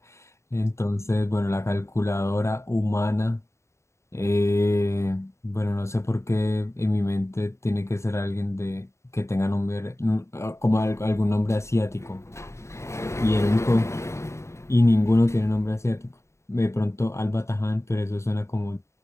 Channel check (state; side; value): late; right; 0.14 ms